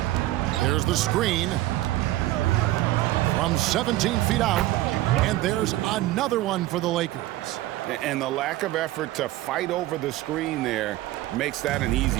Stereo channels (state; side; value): quieter; left; 16.2 dB